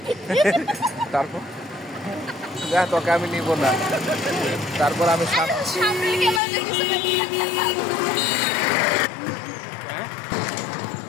তারপর যা তোকে আমি নিব না, তারপর আমি সামনে ক্যামেরা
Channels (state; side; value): drops out; right; at 6.4 s